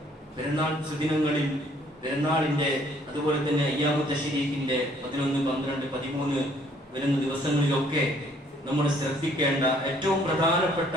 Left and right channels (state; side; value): normal; both; correlation 0.62